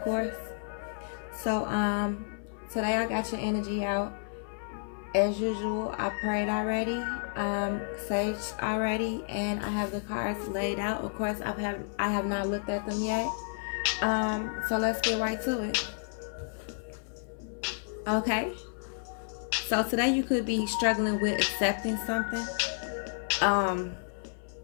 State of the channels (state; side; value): silent; right; 57 dB below the other